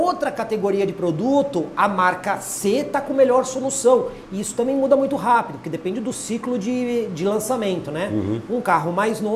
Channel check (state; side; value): identical; both; correlation 1.00